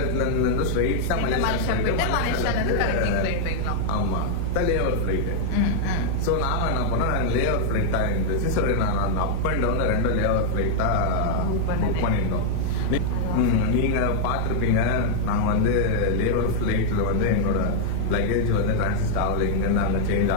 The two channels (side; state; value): both; different; correlation 0.00